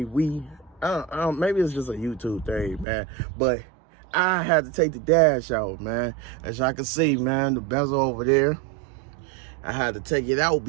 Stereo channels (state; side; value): drops out; left; at 2.9 s